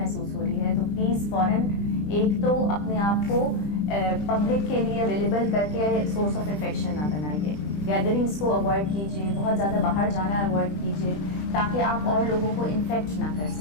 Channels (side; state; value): right; late; 20 ms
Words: हो रही है, तो प्लीज़ फ़ौरन एक तो अपने आप को पब्लिक के लिए अवेलेबल करके सोर्स ऑफ इन्फेक्शन ना बनाइए। गैदरिंग्स को अवॉइड कीजिए, बहुत ज़्यादा बाहर जाना अवॉइड कीजिए। ताकि आप और लोगों को इन्फेक्ट ना कर